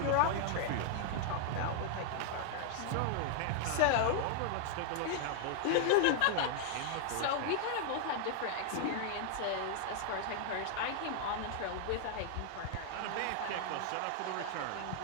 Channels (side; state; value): both; different; correlation -0.01